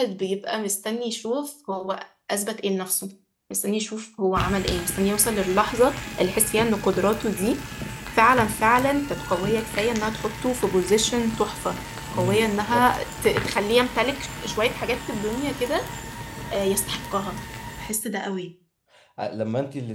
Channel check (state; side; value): identical; both; correlation 1.00